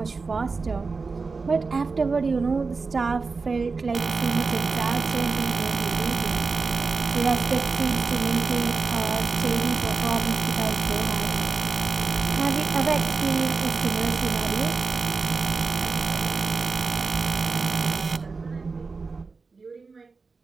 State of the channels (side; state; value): left; quieter; 4.4 dB